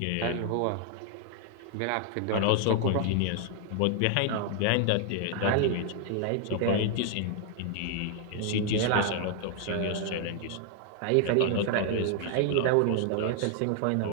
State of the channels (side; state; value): both; different; correlation 0.00